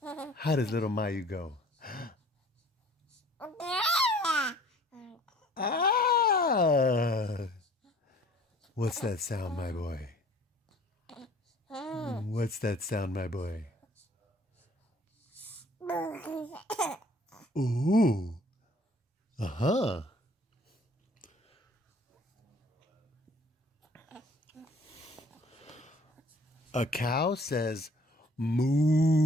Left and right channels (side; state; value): both; normal; correlation 0.54